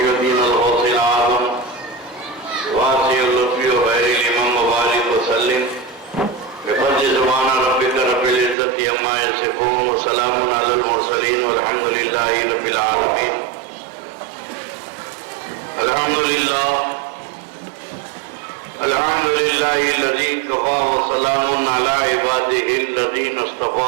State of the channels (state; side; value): drops out; left; at 8.6 s